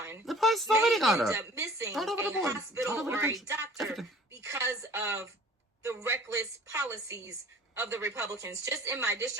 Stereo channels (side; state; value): both; normal; correlation 0.48